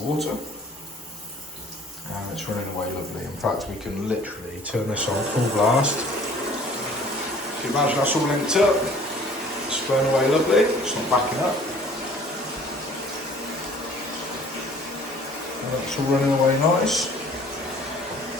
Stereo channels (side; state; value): both; normal; correlation 0.52